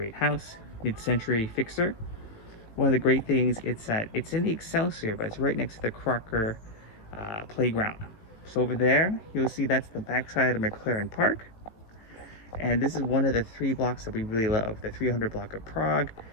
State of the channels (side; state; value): right; late; 18 ms